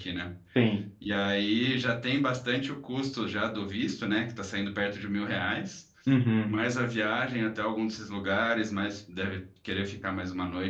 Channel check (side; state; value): both; identical; correlation 1.00